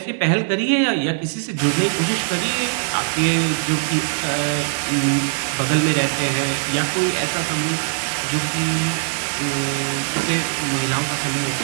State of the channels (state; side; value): silent; left; digital silence